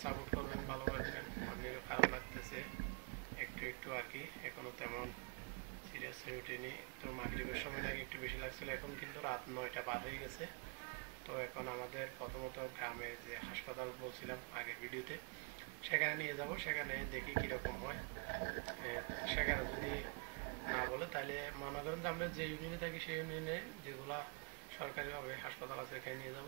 সাপোর্ট করবেন, ভালোবাসবেন। অন্যেরও খারাপ লাগতেছে একটু একটু আর কি, এখনও তেমন সিরিয়াস হয়ে ওঠেনি। তো মাগরিবের সময় নাকি একটু বেশি লাগছিল, এখন কিন্তু রাত 9টা পার হয়ে গেছে। তো এখন আমাদের প্রথমত গ্রামের যে হাসপাতাল বলছিলাম আগের ভিডিওতে, সেখানে নিয়ে যাব, সেখানে দেখি কীরকম হয়। সেখানে যদি না বলে তাহলে মনে করেন যে আমরা যে ইউনিয়নে থাকি সেই ইউনিয়নে যেগুলো সরকারিভাবে হাসপাতাল আছে এখানে নিয়ে যাব।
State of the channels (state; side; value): quieter; left; 37.4 dB